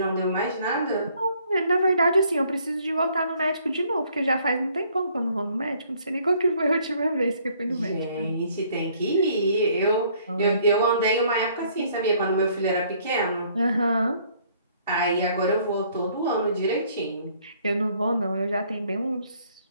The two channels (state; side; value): inverted; both; correlation -0.63